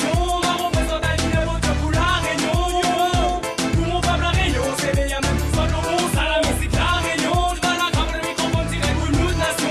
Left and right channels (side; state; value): both; identical; correlation 1.00